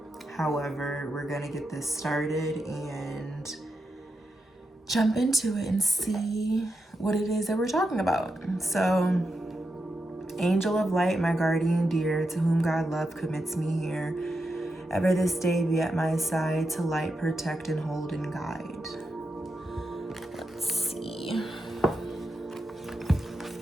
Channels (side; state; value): both; normal; correlation 0.86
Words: However, we're gonna get this started and jump into it and see what it is that we're talking about. So, angel of light, my guardian dear, to whom God love commits me here, ever this day be at my side to light, protect, and hold and guide. Let's see.